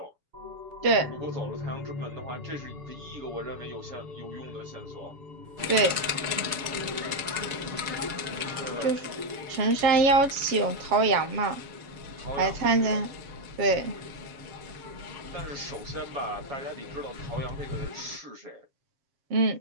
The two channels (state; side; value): late; left; 7.2 ms